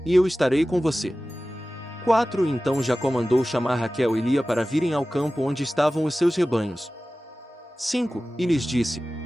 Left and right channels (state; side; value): normal; both; correlation 0.96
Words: e eu estarei com você. 4. Então Jacó mandou chamar Raquel e Lia para virem ao campo onde estavam os seus rebanhos. 5. E lhes disse: